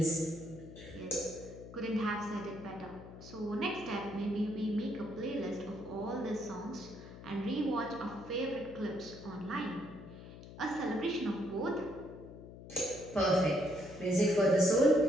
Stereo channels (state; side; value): noise; left; hum, 15 dB below the sound